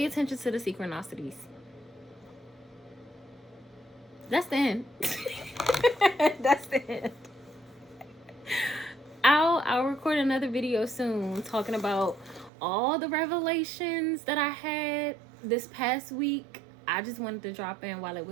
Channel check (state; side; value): drops out; left; at 12.5 s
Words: attention to the synchronicities. That's the end. That's the end. I'll record another video soon talking about all the revelations that I had this past week. I just wanted to drop in while it